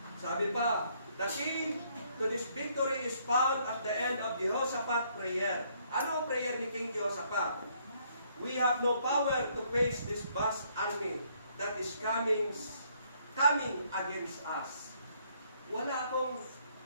Sabi pa, the key to this victory is found at the end of Jehoshaphat's prayer. Ano ang prayer ni King Jehoshaphat? We have no power to face this vast army that is coming against us. Wala akong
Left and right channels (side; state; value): both; inverted; correlation -0.68